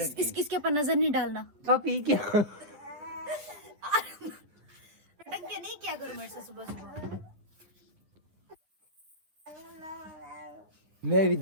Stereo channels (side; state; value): left; late; 10 ms